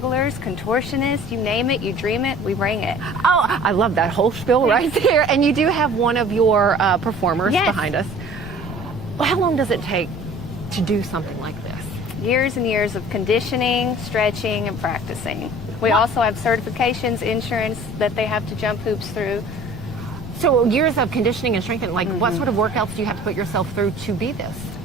contortionists, you name it, you dream it, we bring it. Oh, I love that whole spiel right there. And you do have one of your performers behind us. Well, how long does it take to do something like this? Years and years of conditioning, stretching, and practicing. We also have certifications, insurance that they have to jump hoops through. So years of conditioning and strengthening, like what sort of workouts do you have to put yourself through to be this?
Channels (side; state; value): left; noise; rumble, 12 dB below the sound